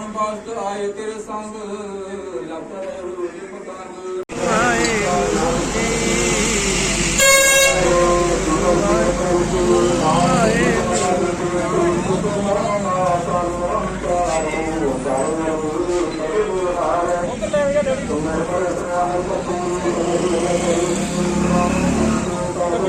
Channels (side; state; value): both; identical; correlation 1.00